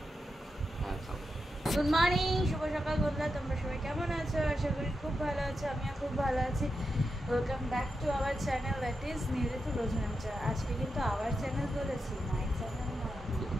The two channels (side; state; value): both; normal; correlation 0.88